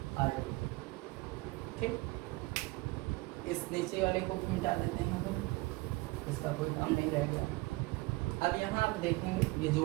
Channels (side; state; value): left; quieter; 22.5 dB